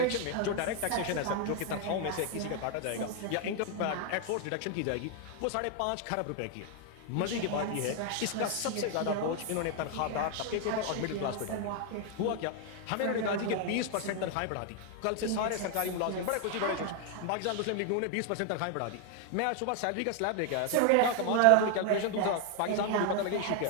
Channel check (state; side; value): different; both; correlation 0.01